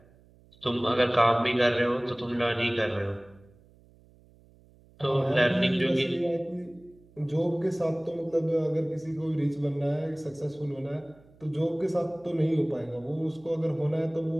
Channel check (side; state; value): right; noise; hum, 28 dB below the sound